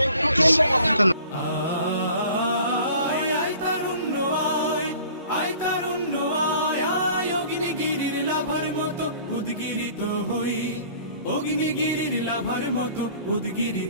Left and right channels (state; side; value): inverted; both; correlation -0.49